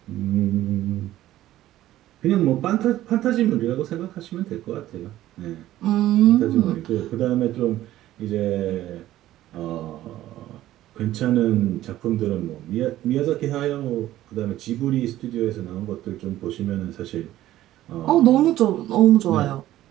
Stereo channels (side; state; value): left; quieter; 14.2 dB